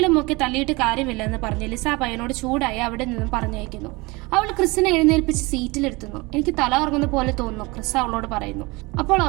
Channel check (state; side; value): quieter; left; 24.5 dB